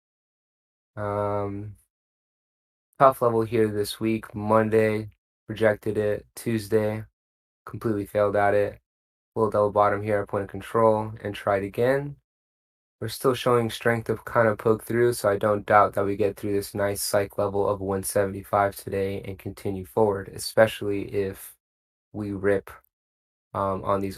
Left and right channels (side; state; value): both; identical; correlation 1.00